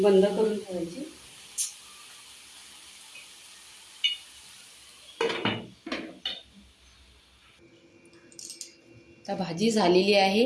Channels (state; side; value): identical; both; correlation 1.00